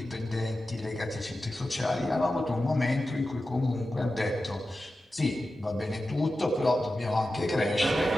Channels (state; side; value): normal; both; correlation 0.93